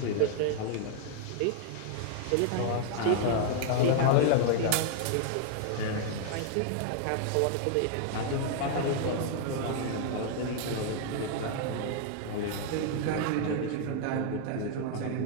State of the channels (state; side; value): different; both; correlation 0.00